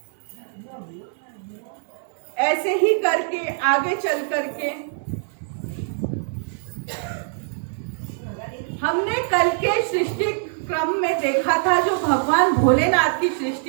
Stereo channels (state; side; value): silent; left; 62 dB below the other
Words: ऐसे ही करके आगे चल करके हमने कल के सृष्टि क्रम में देखा था, जो भगवान भोलेनाथ की